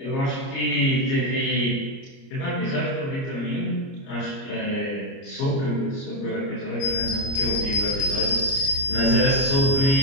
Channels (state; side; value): late; right; 30 ms